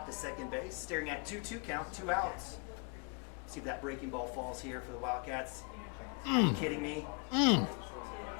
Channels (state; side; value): quieter; right; 34.3 dB